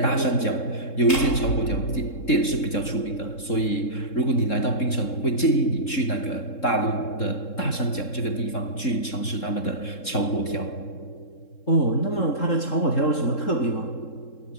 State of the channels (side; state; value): right; late; 3.7 ms